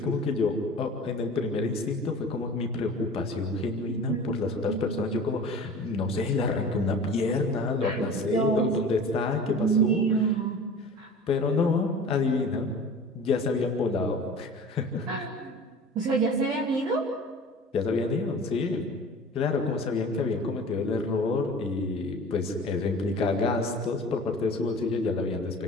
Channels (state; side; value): normal; both; correlation 0.40